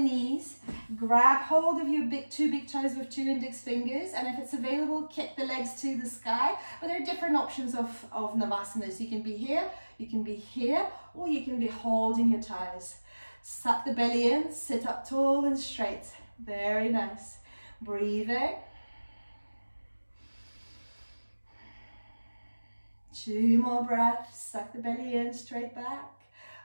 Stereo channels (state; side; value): inverted; both; correlation -1.00